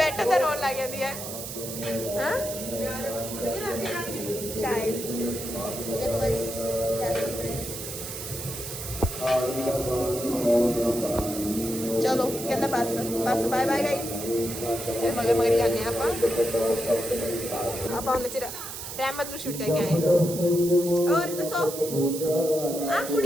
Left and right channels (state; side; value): noise; right; hiss, 8 dB below the sound